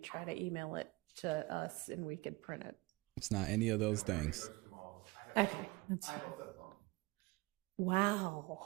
to email it to us and we could print it. It's not any of those things. Okay. That's fine.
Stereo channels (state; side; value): quieter; left; 22.6 dB